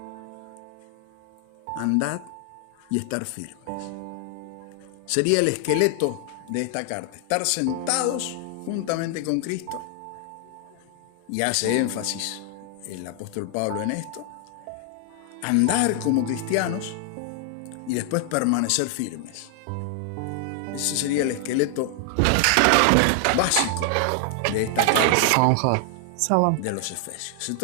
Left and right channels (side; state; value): both; different; correlation 0.00